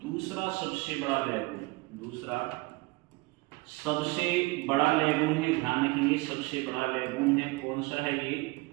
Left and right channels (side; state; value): left; quieter; 24.1 dB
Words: दूसरा सबसे बड़ा लैगून, दूसरा सबसे बड़ा लैगून है। ध्यान रखेंगे सबसे बड़ा लैगून है कौन सा है?